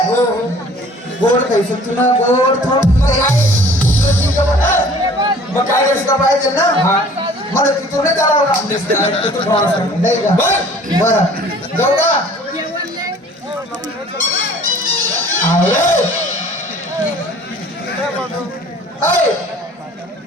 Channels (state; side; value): normal; both; correlation 0.50